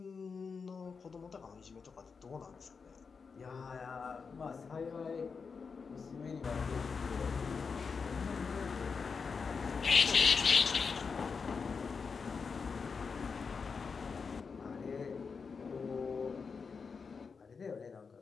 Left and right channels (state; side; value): quieter; right; 5.3 dB